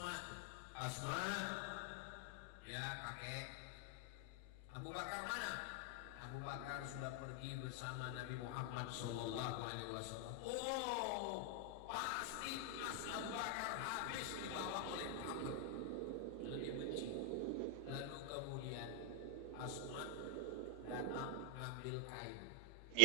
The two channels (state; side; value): different; both; correlation 0.00